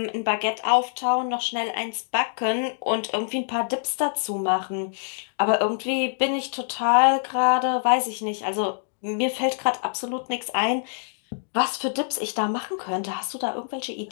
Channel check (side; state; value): right; silent; digital silence